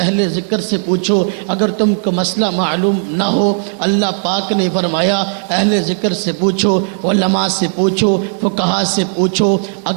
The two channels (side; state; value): left; silent; digital silence